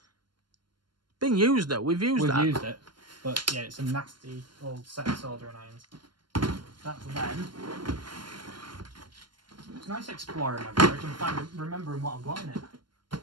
Been used though. We've used it, but yeah, it's a nasty old set of soldering irons. That's them. It's nice exploring my garage and remembering what I've got in it.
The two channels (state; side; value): late; left; 0.72 ms